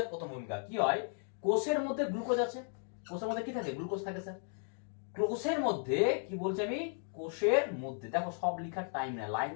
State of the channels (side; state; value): right; silent; 54 dB below the other